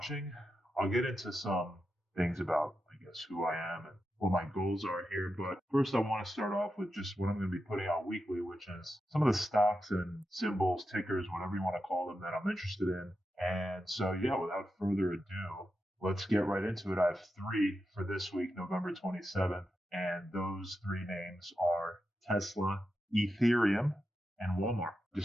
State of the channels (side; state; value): both; normal; correlation 0.88